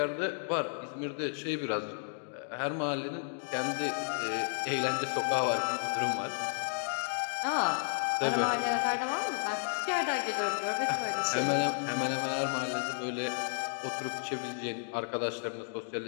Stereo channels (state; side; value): silent; right; digital silence